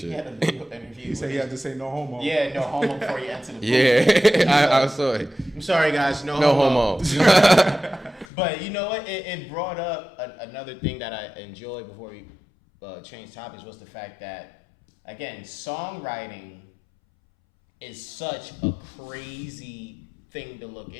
He said he had to say no homo. Yeah, no homo before you enter the booth. Yeah, I saw it. I'm sorry, guys, no homo. But you know what? It brought up another thing that I enjoyed before we changed topics, was the fact that, again, songwriting is such a crazy thing to look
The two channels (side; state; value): right; drops out; at 8.2 s